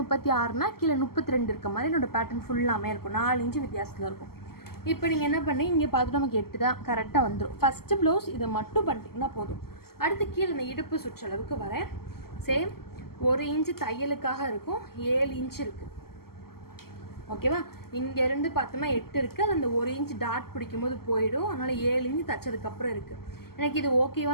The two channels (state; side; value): late; right; 0.94 ms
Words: கீழே 32 இருக்க மாதிரி என்னோடய பேட்டர்ன் ஃபுல்லாமே இருக்கும். 4 இன்ச்சு வித்தியாசத்தில் இருக்கும். இப்போ நீங்கள் என்ன பண்ணி இங்கே பார்த்துட்டு நமக்கு 8 தான் கரெக்டாக வந்துடும். ஃபஸ்ட்டு ப்ளவுஸ் இதை மட்டும் பண்ணிட்டீங்கன்னா போதும். அடுத்து கீழே இந்த இடுப்பு சுற்றளவுக்கு வரேன். சேம் 1 இன்ச்சு தையலுக்காக இருக்கும், 7 இன்ச்சு இருக்குது. ஓகேவா? இங்கேருந்து பார்த்தோம்னா 8 இருக்குது, அது அந்த 1 இன்ச்சு டாட் பிடிக்கும்போது போயிடும். அதனால் 7 இன்ச்சு தைச்சதுக்கப்புறம் இருக்குது. எனக்கு இது